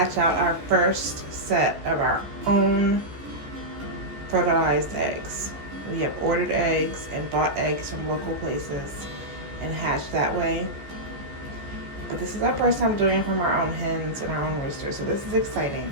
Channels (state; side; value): late; left; 14 ms